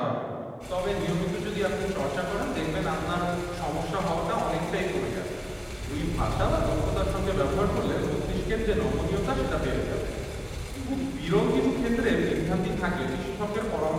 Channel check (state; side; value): identical; both; correlation 1.00